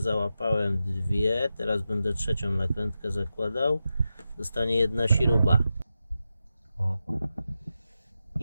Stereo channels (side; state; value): both; inverted; correlation -0.90